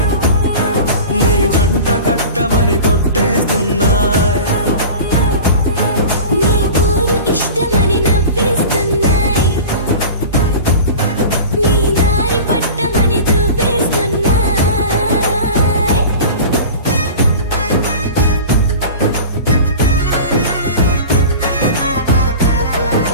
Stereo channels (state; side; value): inverted; both; correlation -0.35